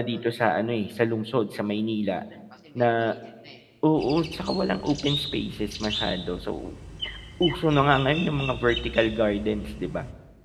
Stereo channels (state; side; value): identical; both; correlation 1.00